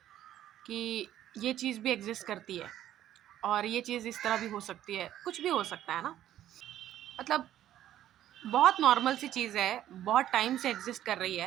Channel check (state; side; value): quieter; left; 12.1 dB